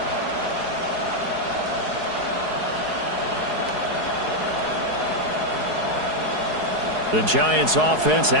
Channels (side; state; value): left; late; 4.7 ms